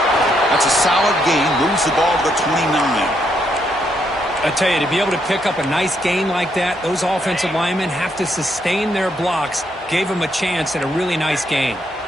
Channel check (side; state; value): both; normal; correlation 0.76